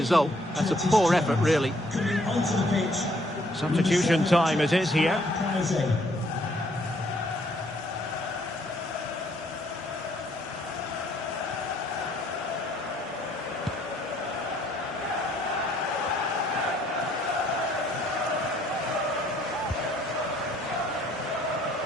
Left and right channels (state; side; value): normal; both; correlation 0.65